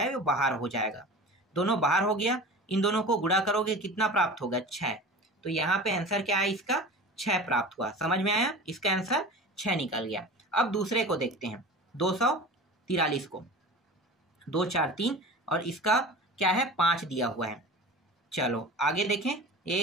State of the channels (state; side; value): normal; both; correlation 0.35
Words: वो बाहर हो जाएगा। दोनों बाहर हो गया। इन दोनों को गुणा करोगे कितना प्राप्त होगा, 6। तो यहाँ पे आंसर क्या है इसका, 6 प्राप्त हुआ। समझ में आया, इसका आंसर 6 निकल गया। अब दूसरे को देखते हैं, 243 को, 2 4 3 और इसका क्या है, 5 दिया हुआ है। चलो आगे देखें,